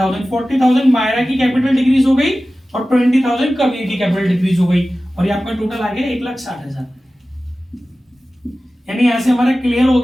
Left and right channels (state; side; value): normal; both; correlation 0.96